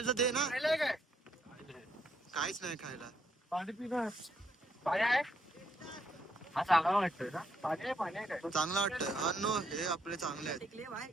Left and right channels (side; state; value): both; normal; correlation 0.74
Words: तर दे ना. काहीच नाही खायला. पाणी पिणार. हा चांगला वाटतोय ना. चांगला वाटतं अन्न हे आपले चांगले आहेत.